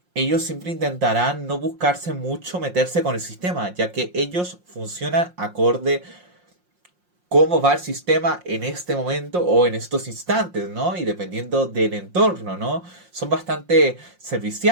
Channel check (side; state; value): left; late; 5.6 ms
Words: ellos siempre intentarán no buscarse mucho meterse con el sistema, ya que ellos funcionan acorde cómo va el sistema en este momento o en estos instantes, ¿no? Y dependiendo del entorno, ¿no? Son bastante